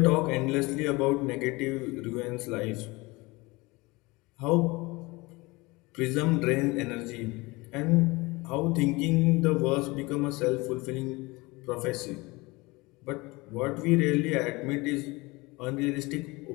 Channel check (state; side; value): quieter; right; 23.5 dB